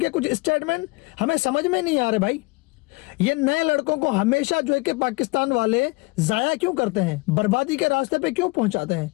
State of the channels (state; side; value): quieter; right; 24.8 dB